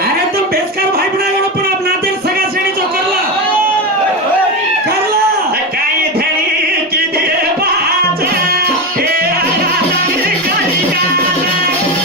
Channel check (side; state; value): both; normal; correlation 0.16